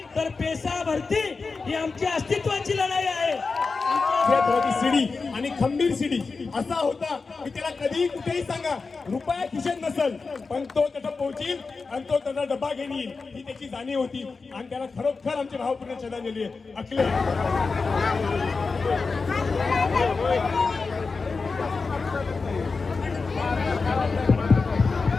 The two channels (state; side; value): quieter; right; 4.4 dB